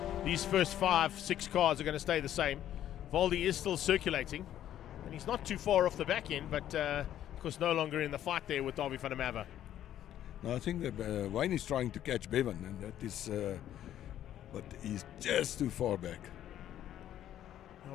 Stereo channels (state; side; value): quieter; right; 11.5 dB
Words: These first 5, 6 cars are going to stay the same. Valdi is still circulating, and he's not too far off the back end, but of course no longer in the fight there with Davy van der Merwe. No, I think that Wayne is trying to catch Bevan, and that is, but he's just too far back.